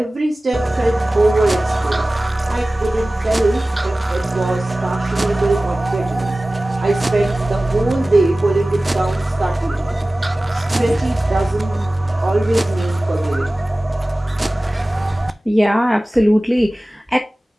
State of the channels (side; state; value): both; normal; correlation 0.97